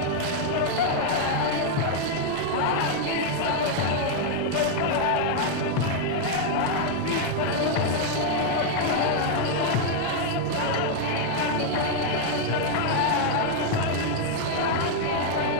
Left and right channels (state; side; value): different; both; correlation 0.00